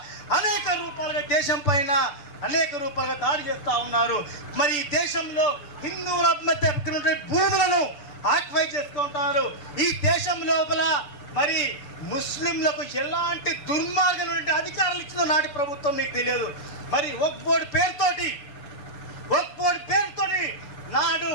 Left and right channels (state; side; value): late; right; 6.8 ms